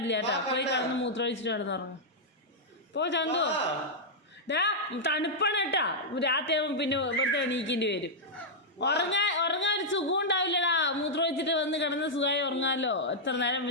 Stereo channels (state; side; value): normal; both; correlation -0.06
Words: കേട്ടോ. പോയി കിടന്ന് മൂത്രമൊഴിച്ചിട്ട് കിടന്നുറങ്ങും. പോ ചന്തു. തണുപ്പാണ് കേട്ടാ. രാത്രി ആകുമ്പോൾ പിന്നെ വെറുതെ എണീക്കേണ്ടി വരും. ഉറങ്ങാൻ ഒരു സുഖം ഉണ്ടാവില്ലടാ. മൂത്രമൊഴിച്ചിട്ട് വന്ന് കിടന്ന് സുഖമായി ഉറങ്ങാമല്ലോ. എത്ര നേരം